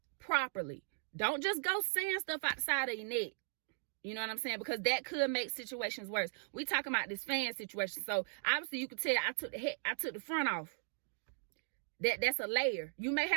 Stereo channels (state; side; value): silent; left; digital silence